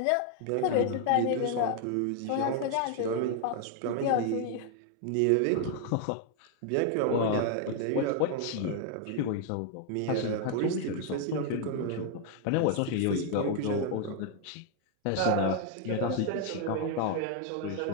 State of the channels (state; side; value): different; both; correlation 0.00